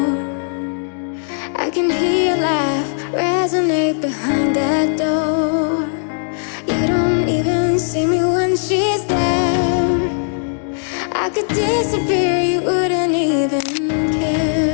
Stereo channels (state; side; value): silent; right; digital silence